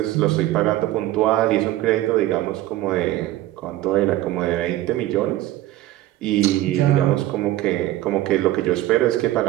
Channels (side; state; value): left; quieter; 15.4 dB